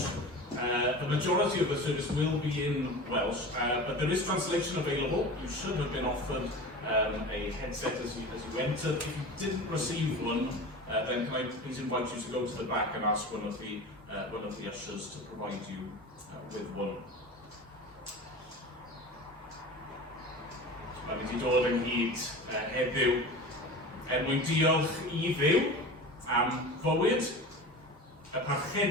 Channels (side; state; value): both; normal; correlation 0.33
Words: the majority of the service will be in Welsh, but there is translation available. You should have been offered a headset as you entered. If you didn't receive one, then can I please invite you to go to the back and ask one of the ushers to provide you with one. Mae'n mynd I dod ynghyd heddiw mwyn diolch I Dduw am fywyd y